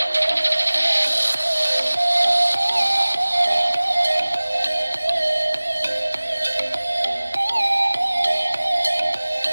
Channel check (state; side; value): inverted; both; correlation -1.00